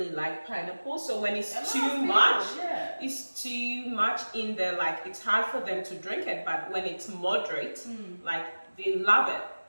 like pineapple, so when it's too much, it's too much in there, like it's hard for them to drink it. But when it's moderate, like they love it.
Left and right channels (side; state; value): both; inverted; correlation -1.00